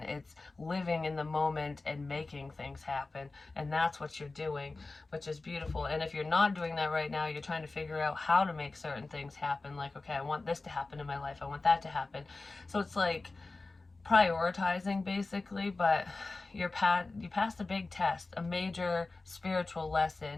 It's living in the moment and making things happen. And that's what you're doing, which is beautiful. And if you're not doing that right now, you're trying to figure out how to make certain things happen. Like, okay, I want this to happen in my life. I want that to happen. So it's like prioritizing basically, but you passed a big test, a major spiritual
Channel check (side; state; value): right; quieter; 3.5 dB